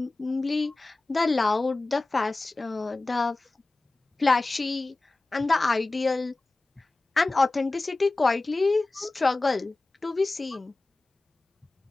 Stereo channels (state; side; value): quieter; right; 3.2 dB